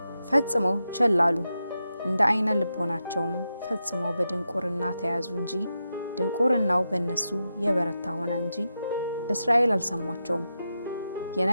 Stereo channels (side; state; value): both; inverted; correlation -0.88